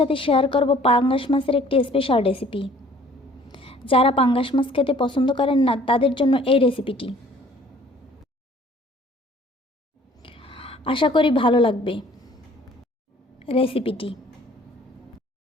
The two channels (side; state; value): both; normal; correlation 0.54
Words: শেয়ার করব পাঙ্গাস মাছের একটি স্পেশাল রেসিপি। যারা পাঙ্গাস মাছ খেতে পছন্দ করেন না তাদের জন্য এই রেসিপিটি। আশা করি ভালো লাগবে রেসিপিটি।